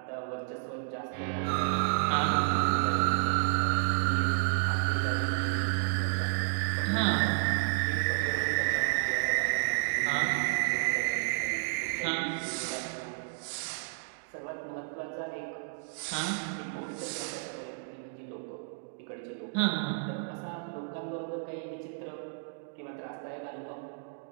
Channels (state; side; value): silent; left; digital silence